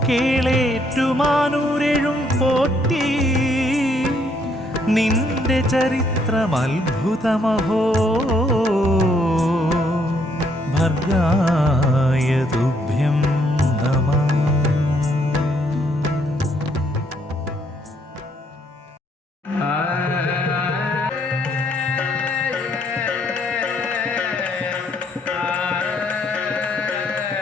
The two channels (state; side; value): normal; both; correlation 0.70